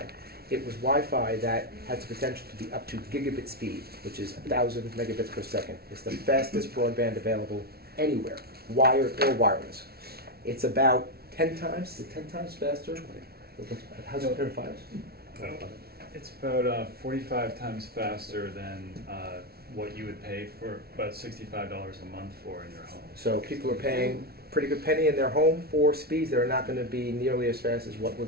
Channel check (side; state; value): left; late; 0.45 ms